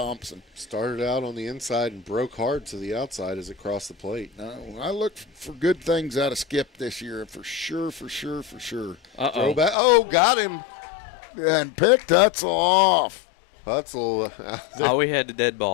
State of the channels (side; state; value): right; drops out; at 9.8 s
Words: Started out on the inside and broke hard to the outside as it crossed the plate. No, I look for good things out of Skip this year, for sure. Uh-oh. Throwback. Oh, got him. And picked Hutzel off. Hutzel. Oh, we had the dead